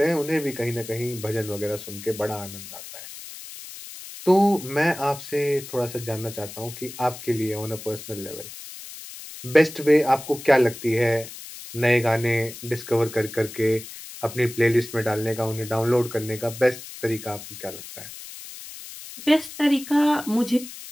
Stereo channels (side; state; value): left; noise; hiss, 13 dB below the sound